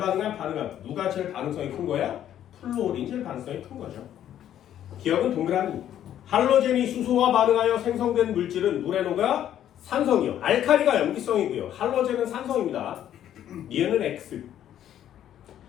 반응함. 누가 제일 반응성이 큰 거야? 플로린이 제일 반응성이 큰 거죠. 기억은 동그라미. 할로젠이 수소와 반응하여 생성된 물질은 물에 녹아 산성이요. 알칼리가 염기성이고요. 할로젠은 산성입니다. 니은은 X.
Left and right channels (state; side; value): quieter; right; 11.0 dB